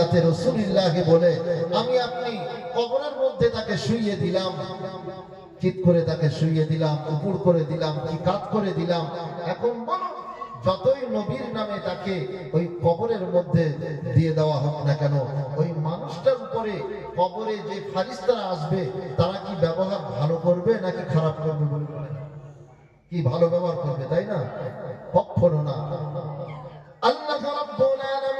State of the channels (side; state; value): both; identical; correlation 1.00